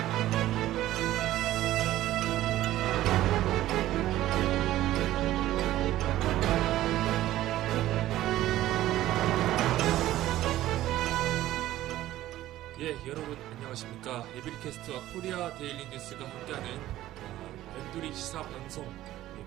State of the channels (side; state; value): left; quieter; 14.6 dB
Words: 예, 여러분 안녕하십니까. 에브리캐스트와 코리아 데일리 뉴스가 함께하는 벤두리 시사 방송